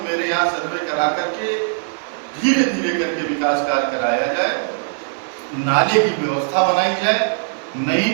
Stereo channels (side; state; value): left; silent; digital silence